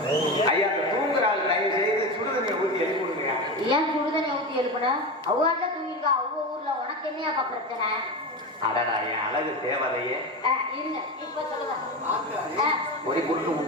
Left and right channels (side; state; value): both; normal; correlation 0.22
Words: ஐயா அந்த தூங்குற ஆள் தயவு செய்து சுடுதண்ணியை ஊற்றி எழுப்பி விடுங்க ஏன் சுடுதண்ணியை ஊற்றி எழுப்புனா அவ்வாறு தூங்கிருக்கா அவ்வளோ ஊர்ல உனக்கு என்னையாப்பா பிரச்சனை அடடா என் அழகு தேவதையே இருங்க இப்ப சொல்லுங்க ஒரு குறுக்கு